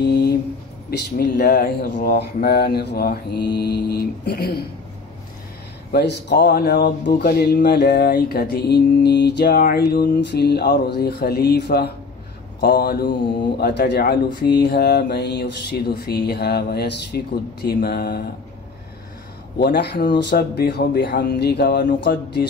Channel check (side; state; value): right; quieter; 4.4 dB